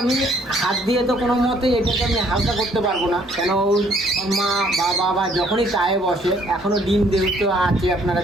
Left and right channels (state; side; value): normal; both; correlation 0.63